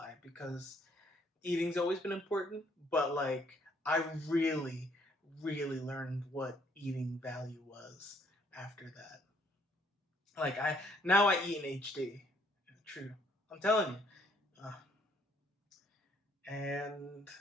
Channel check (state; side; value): normal; both; correlation 0.66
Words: because eating's always been important, but like I really, really learned what eating value was after that. Like I eat in HD. True, I'm telling you, and